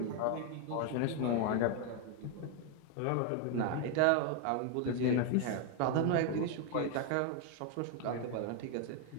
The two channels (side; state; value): both; different; correlation 0.01